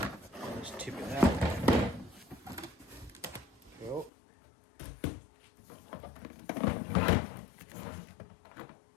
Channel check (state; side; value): drops out; right; at 4.1 s